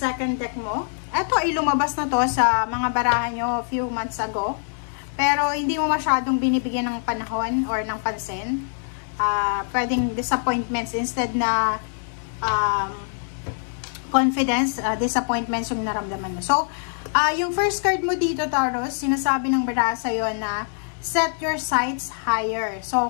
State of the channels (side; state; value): right; silent; 63 dB below the other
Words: deck mo. Ito ay lumabas na to sa mga barahan nyo a few months ago. Pero hindi mo masyadong binibigyan ng panahon or ng pansin. Pwedeng disappointments instead na confidence, disappointments yung naramdaman mo. So, yung first card mo dito, Taurus, sinasabi ng baraha sa'yo na set your sights higher. So,